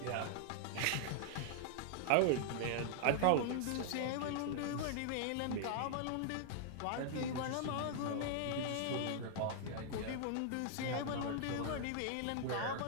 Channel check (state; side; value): different; both; correlation -0.01